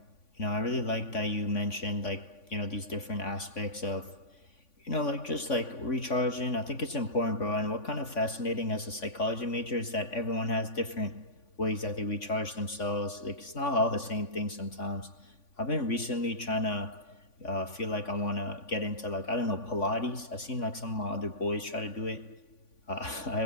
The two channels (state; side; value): late; right; 3.5 ms